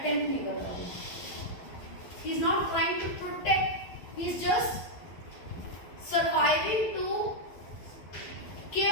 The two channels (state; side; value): late; right; 12 ms